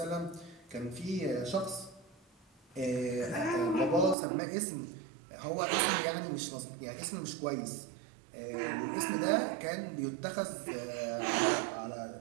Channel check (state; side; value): drops out; left; at 4.2 s